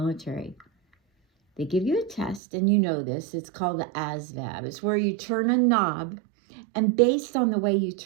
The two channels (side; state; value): left; drops out; at 2.4 s